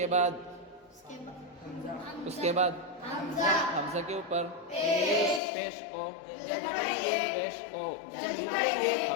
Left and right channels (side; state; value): right; drops out; at 5.4 s